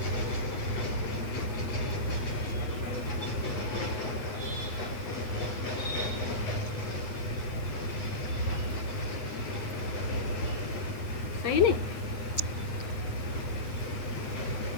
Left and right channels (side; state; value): right; late; 8.9 ms